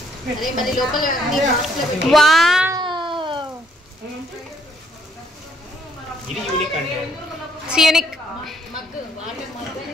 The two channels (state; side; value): normal; both; correlation 0.67